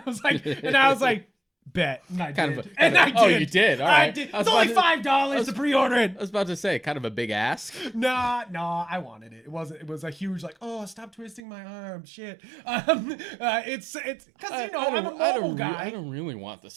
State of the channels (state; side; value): drops out; left; at 11.4 s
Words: was like, bet. And I did. Oh, you did? All right. I did. It's only $5 to pre-order it. I was about to say, kind of a big ask. No, I wanted it. It was a huge like, oh, stop twisting my arm, shit. It's because I'm a mobile guy. I don't really want the